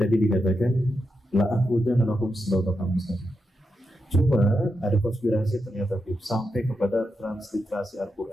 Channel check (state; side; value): normal; both; correlation 0.86